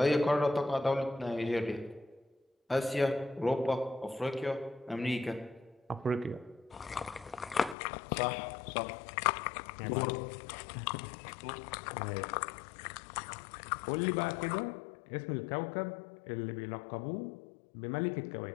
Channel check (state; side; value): drops out; right; at 7.8 s